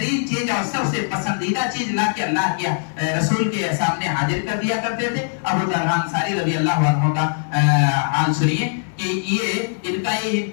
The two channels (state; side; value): silent; right; 65 dB below the other